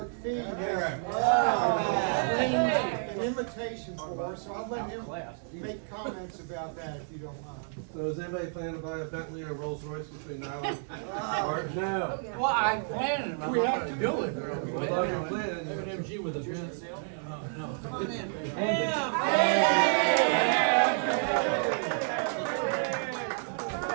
Fee has an invitation for us, so I'll let him make comments about that if you don't mind. So is anybody planning to buy a Bentley or Rolls Royce between now and March? No. Well, I planned it, I'm We not have gonna to do it. Well, if you're planning, MG with a Benz.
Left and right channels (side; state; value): left; silent; digital silence